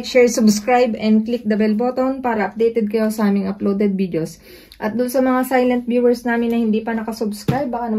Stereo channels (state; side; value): identical; both; correlation 1.00